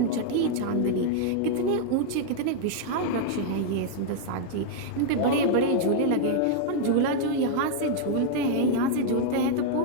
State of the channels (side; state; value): both; different; correlation 0.00